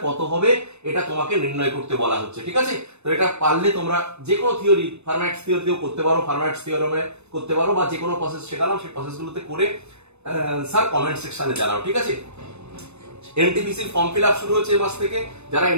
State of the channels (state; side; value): late; left; 0.81 ms